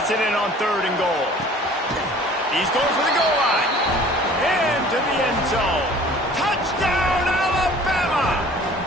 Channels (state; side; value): normal; both; correlation 0.49